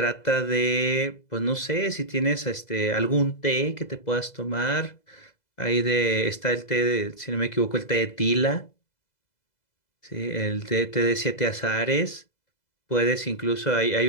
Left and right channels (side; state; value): right; late; 2.0 ms